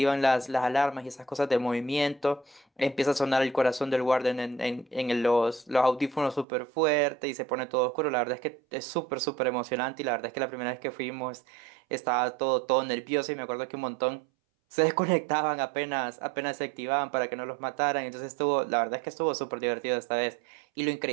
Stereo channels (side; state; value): left; drops out; at 6.5 s